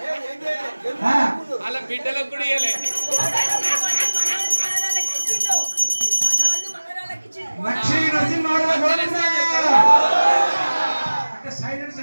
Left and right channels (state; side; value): inverted; both; correlation -1.00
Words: అలా బిడ్డలకు కూడా ఇయ్యలే. లక్ష్మీ నరసింహారావు అంటే సైలెంట్